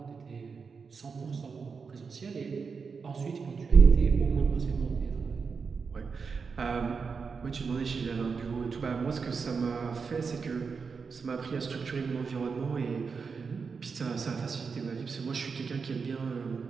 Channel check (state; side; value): quieter; left; 5.3 dB